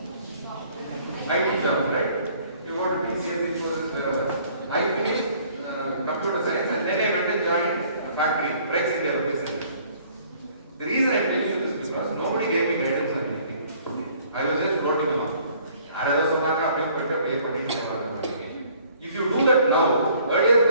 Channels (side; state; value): both; inverted; correlation -0.58